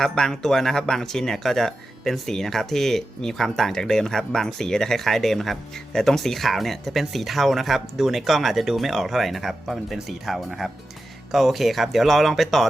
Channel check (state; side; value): normal; both; correlation 0.91